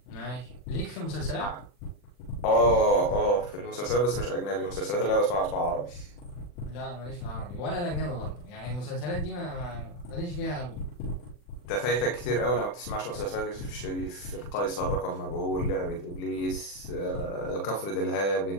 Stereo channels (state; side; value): late; right; 40 ms